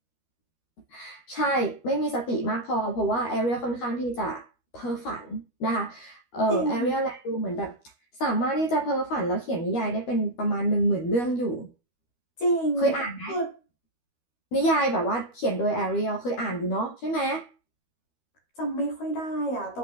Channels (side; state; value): right; late; 12 ms